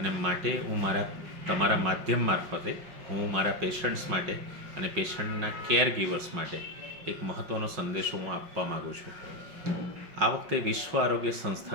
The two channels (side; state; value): left; late; 5.4 ms